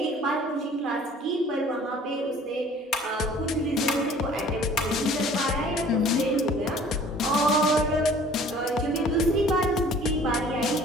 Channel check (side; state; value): both; normal; correlation 0.51